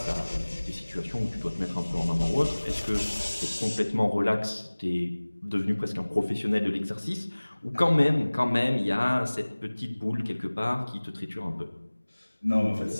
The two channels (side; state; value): both; inverted; correlation -1.00